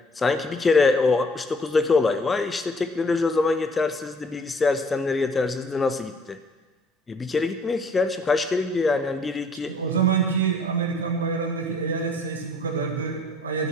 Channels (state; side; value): normal; both; correlation 0.58